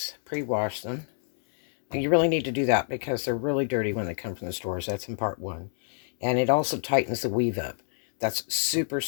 pre-washed them. And you really need to do that because they're really dirty when they come from the stores. That's in part 1. And it also tightens the weave up. That's super,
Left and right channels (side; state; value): right; silent; 60 dB below the other